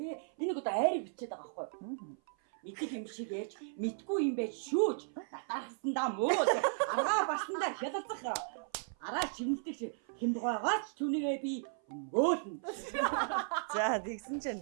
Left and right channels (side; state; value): left; silent; 54 dB below the other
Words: Энийг одоо айрыг бичээд байгаа байхгүй юу? Мэдих юм шиг ярьж мэдгүй юм байж шүүж татаархсандаа мууж аргаа барсандаа хялалцах араа шивнэлдэг хямбгоогооч түүнийгээ би өмгөөлнө. За тэгсэн чинь